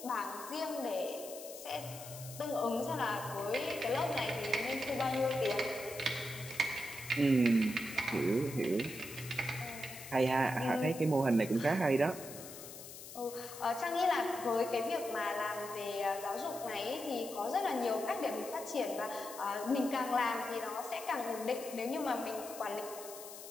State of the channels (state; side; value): noise; left; hiss, 13 dB below the sound